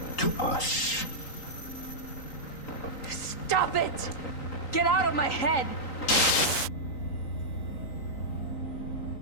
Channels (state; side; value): late; right; 3.9 ms